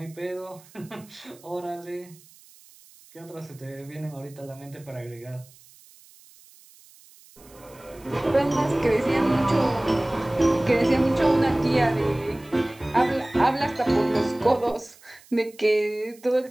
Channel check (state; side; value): noise; right; hiss, 25 dB below the sound